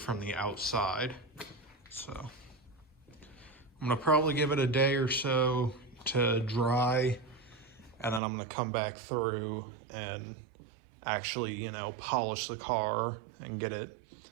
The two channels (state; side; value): drops out; left; at 8.2 s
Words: the outside. So I'm gonna probably give it a day or so to dry, and then I'm gonna come back through and actually, you know, polish the car and get it